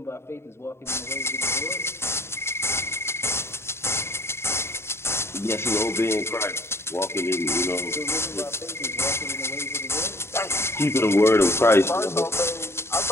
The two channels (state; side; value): late; right; 0.12 ms